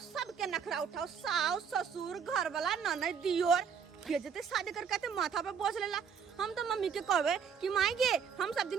सबके नखरा उठाओ साउस ससुर घर वाला ननद दियोर भेजते शादी करके माथा पे बोझ लेला। हम तो मम्मी के कहबे कि मांगे हम सब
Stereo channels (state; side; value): quieter; left; 6.8 dB